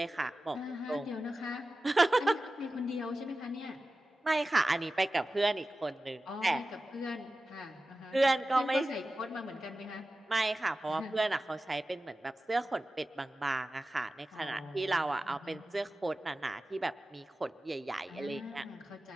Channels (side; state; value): both; normal; correlation 0.95